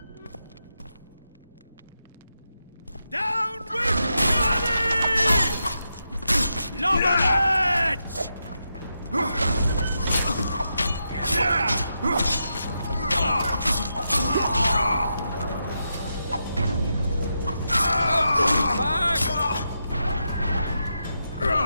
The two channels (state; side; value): inverted; both; correlation -0.85